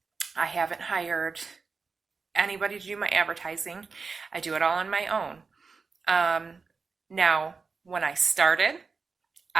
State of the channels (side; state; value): left; quieter; 4.7 dB